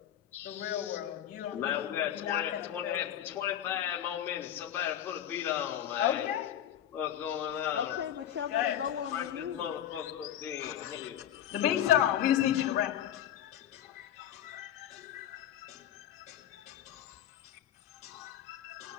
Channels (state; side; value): quieter; right; 10.8 dB